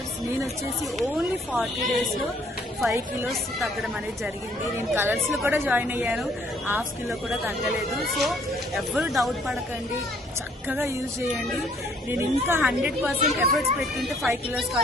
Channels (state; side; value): normal; both; correlation 0.63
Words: నేను వచ్చేసి ఓన్లీ 40 డేస్లో 5 కిలోస్ తగ్గడం అనేది జరిగింది. నేను కలర్స్లో కూడా జాయిన్ అయ్యాను, హాఫ్ కిలో కూడా తగ్గలేదు. సో ఎవరు డౌట్ పడకండి, చక్కగా యూజ్ చేయండి. నేను ఇంకా 100% ఎఫర్ట్స్ పెట్టుకుంటే 5 కిలోస్